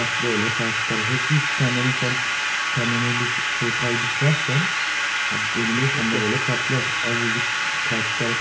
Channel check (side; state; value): both; identical; correlation 1.00